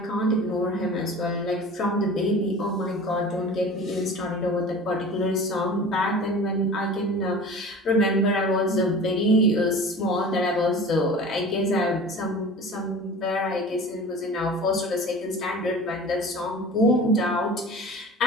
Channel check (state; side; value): normal; both; correlation 0.39